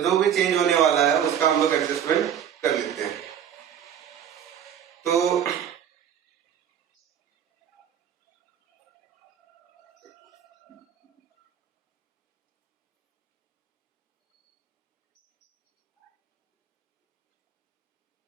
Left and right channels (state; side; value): quieter; left; 9.1 dB